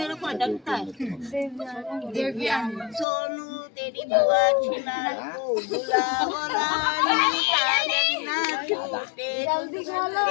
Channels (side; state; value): right; drops out; at 3.1 s